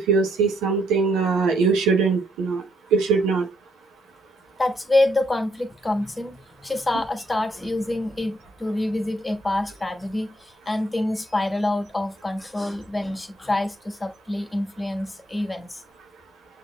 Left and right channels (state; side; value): normal; both; correlation 0.73